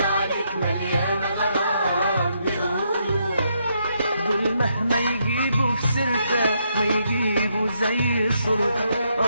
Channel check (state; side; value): inverted; both; correlation -0.77